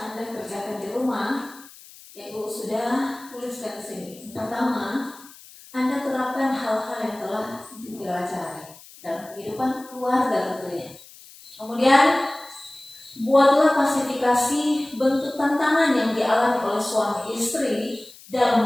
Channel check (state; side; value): noise; left; hiss, 21 dB below the sound